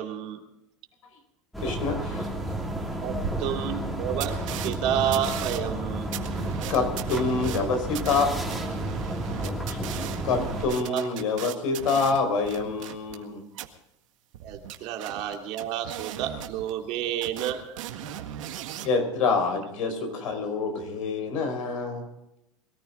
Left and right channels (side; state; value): both; normal; correlation 0.33